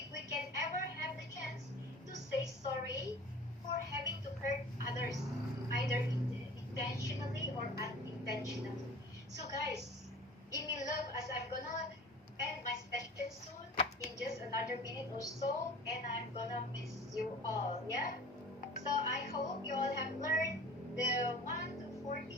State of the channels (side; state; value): both; normal; correlation 0.42